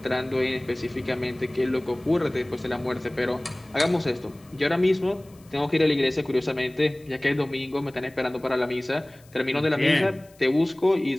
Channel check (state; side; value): noise; left; hiss, 28 dB below the sound